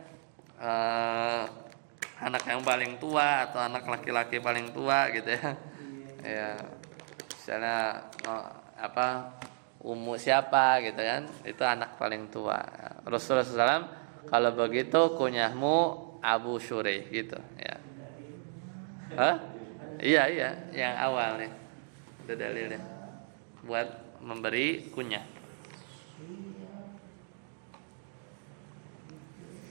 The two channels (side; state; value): left; silent; digital silence